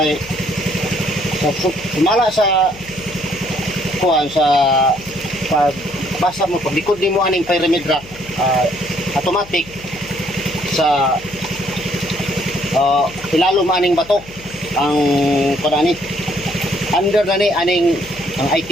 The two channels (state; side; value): noise; left; hum, 20 dB below the sound